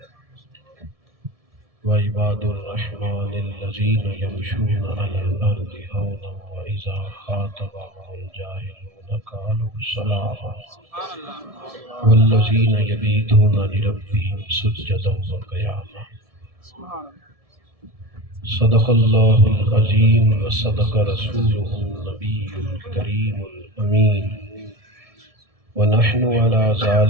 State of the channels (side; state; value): left; late; 1.7 ms